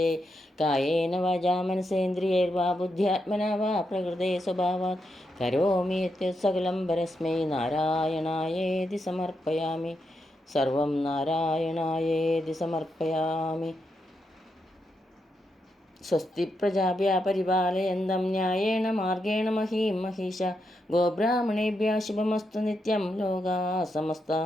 കായേന വാചാ മനസേന്ദ്രിയൈർവാ ബുദ്ധ്യാത്മനാ വാ പ്രകൃതേ സ്വഭാവാത് കരോമി യത്യത് സകലം പരസ്മൈ നാരായണായേതി സമർപ്പയാമി. സർവം നാരായണായേതി സമർപ്പയാമി. സ്വസ്തി പ്രജാഭ്യഃ പരിപാലയന്തം ന്യായേന മാർഗേണ മഹീം മഹീഷാ. ഗോബ്രാഹ്മണേഭ്യഃ ശുഭമസ്തു നിത്യം. ലോകാ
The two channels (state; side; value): normal; both; correlation 0.83